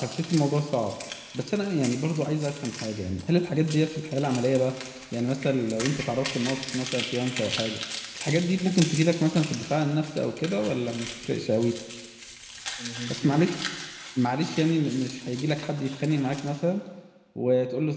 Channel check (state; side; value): identical; both; correlation 1.00